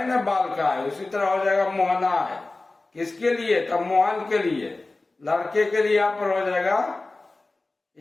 ना बालका है, उसी तरह हो जाएगा मोहनाय। किसके लिए? तब मोहन के लिए, लड़के के लिए यहाँ पर हो जाएगा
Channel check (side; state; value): right; quieter; 3.2 dB